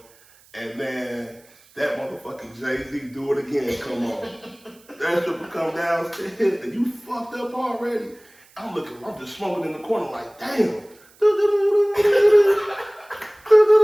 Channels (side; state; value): right; noise; hiss, 28 dB below the sound